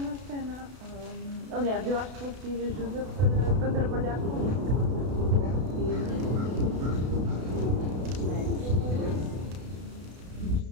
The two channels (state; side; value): late; left; 32 ms